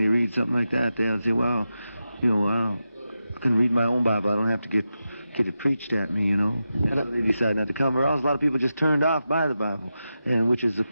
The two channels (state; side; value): inverted; both; correlation -0.90